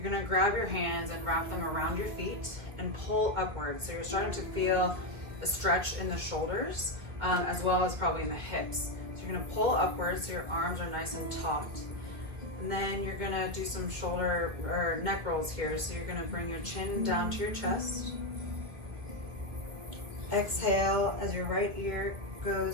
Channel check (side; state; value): left; late; 1.9 ms